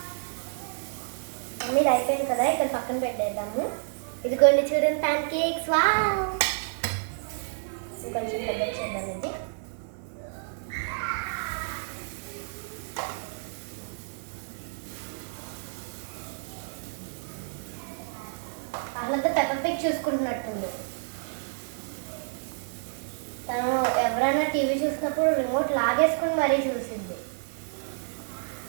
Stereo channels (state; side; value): silent; left; digital silence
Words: మమ్మీది అయిపోయింది కదా, ఇక్కడ పక్కన పెట్టేద్దాము. ఇది కొన్ని చూడండి, ప్యాన్ కేక్స్. వావ్, ఇంకొంచెం పెద్ద చేద్దాం. ఇది అసలు పెప్పర్ పిగ్ చూసుకుంటున్నట్టుంది. తను ఎవరైనా టీవీ చూసినప్పుడు రిమోట్ లాగేసుకుని మరీ చూసింది.